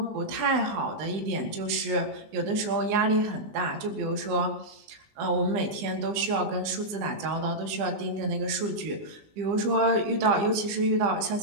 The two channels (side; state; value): left; late; 19 ms